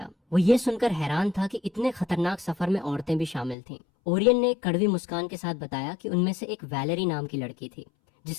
वो ये सुनकर हैरान था कि इतने खतरनाक सफर में औरतें भी शामिल थीं। ओरियन ने एक कड़वी मुस्कान के साथ बताया कि उनमें से एक वैलेरी नाम की लड़की थी,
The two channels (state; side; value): drops out; right; at 3.6 s